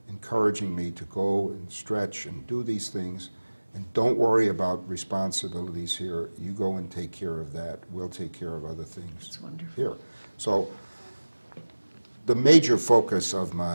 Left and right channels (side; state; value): both; inverted; correlation -1.00